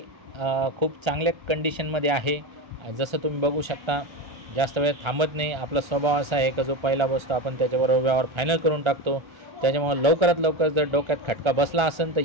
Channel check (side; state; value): left; late; 1.4 ms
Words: खूप चांगल्या कंडिशनमध्ये आहे। जसं तुम्ही बघू शकता, जास्त वेळ थांबत नाही। आपला स्वभाव असा आहे की जो पहिला बसतो आपण त्याच्याबरोबर व्यवहार फायनल करून टाकतो। त्याच्यामुळे लवकरात लवकर जर डोक्यात खटका बसला असेल तर